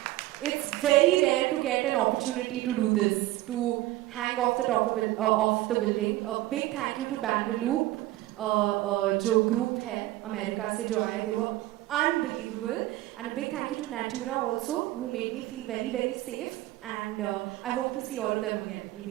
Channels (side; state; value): left; quieter; 16.9 dB